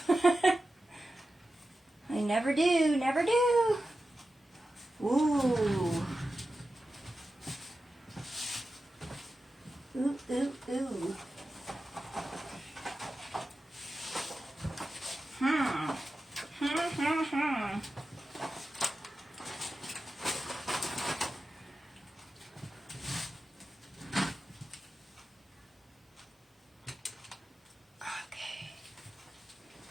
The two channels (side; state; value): both; normal; correlation 0.92